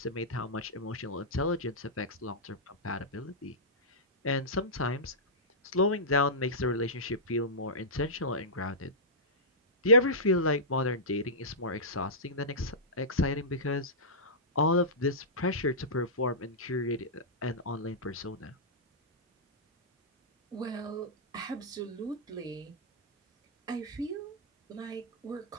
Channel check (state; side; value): normal; both; correlation -0.15